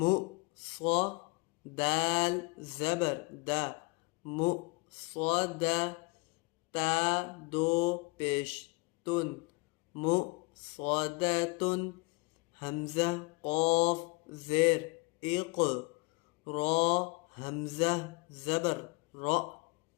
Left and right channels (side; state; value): right; quieter; 28.0 dB